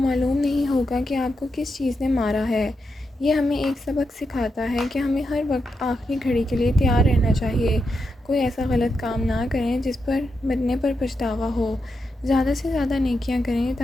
نہیں ہوگا کہ آپ کو کس چیز نے مارا ہے۔ یہ ہمیں ایک سبق سکھاتا ہے کہ ہمیں ہر وقت آخری گھڑی کے لیے تیار رہنا چاہیے۔ کوئی ایسا غلط کام نہ کریں جس پر مرنے پر پچھتاوا ہو۔ زیادہ سے زیادہ نیکیاں کریں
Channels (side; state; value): both; normal; correlation 0.85